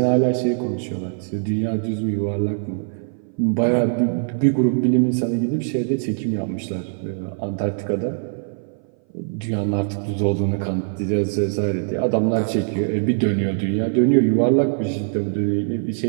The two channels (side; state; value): left; silent; 60 dB below the other